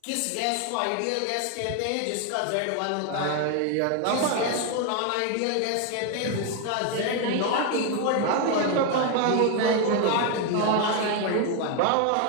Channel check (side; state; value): both; different; correlation 0.01